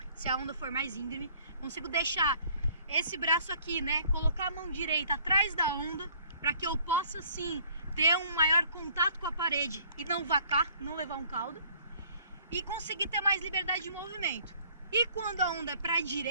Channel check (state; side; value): inverted; both; correlation -0.57